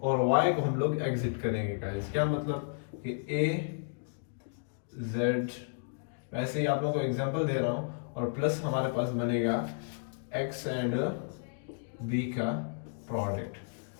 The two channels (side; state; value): right; silent; digital silence